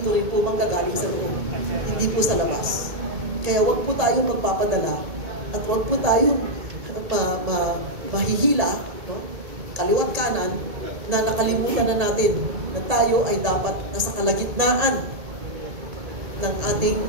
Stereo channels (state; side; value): late; left; 2.2 ms